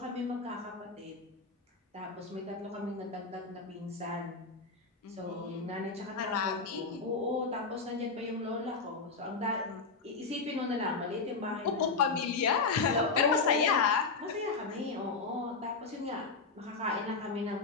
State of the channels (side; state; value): right; quieter; 4.3 dB